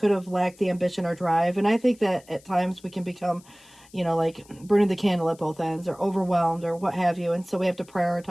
have lacked the ambition or drive. And I think that at times we can become, like burning the candle at both ends or overwhelmed or what have you. And so we have to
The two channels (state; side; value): noise; left; hiss, 26 dB below the sound